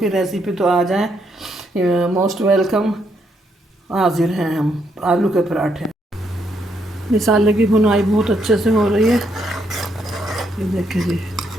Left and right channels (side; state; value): both; normal; correlation 0.75